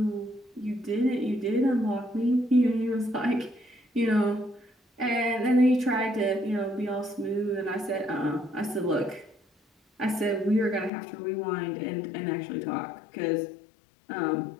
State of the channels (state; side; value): drops out; right; at 10.9 s